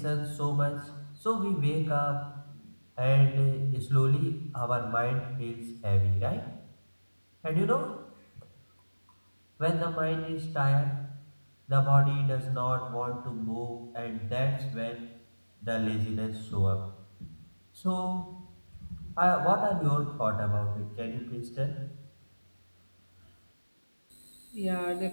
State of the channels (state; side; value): inverted; both; correlation -1.00